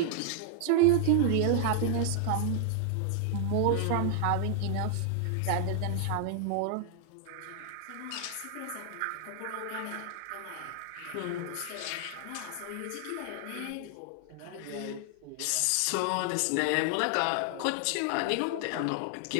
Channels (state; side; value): different; both; correlation 0.00